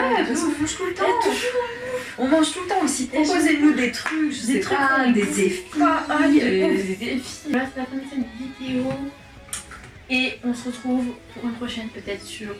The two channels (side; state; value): both; identical; correlation 1.00